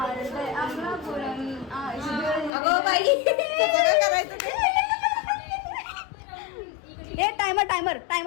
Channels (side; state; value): right; drops out; at 2.5 s